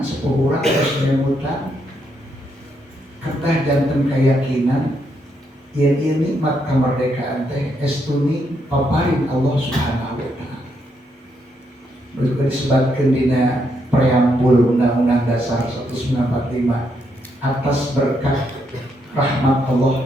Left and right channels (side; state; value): both; normal; correlation 0.77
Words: urang terus memutan kedah janten keyakinan yen ieu nikmat kemerdekaan teh estuni paparin Allah Subhanahu wa taala. Juga disebutkan dina preambul Undang-Undang Dasar 1945 atas berkat rahmat Allah